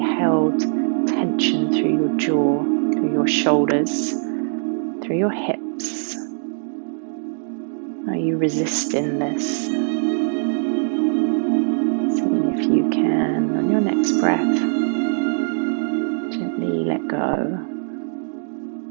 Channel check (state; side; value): silent; left; digital silence